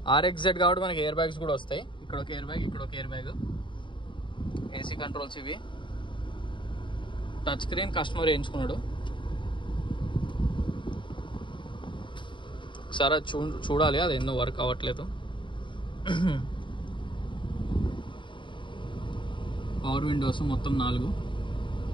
RXZ కాబట్టి మనకి ఎయిర్ బ్యాగ్స్ కూడా వస్తాయి. ఇక్కడ ఒక ఎయిర్ బ్యాగ్, ఇక్కడ ఒక ఎయిర్ బ్యాగ్. AC కంట్రోల్స్ ఇవి. టచ్ స్క్రీన్ కస్టమర్ వేయించుకున్నాడు. ఒకసారి చూడాలి, అది ఎన్నో వర్క్ అవ్వట్లేదు. పవర్ విండోస్ మొత్తం 4.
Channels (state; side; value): late; right; 0.24 ms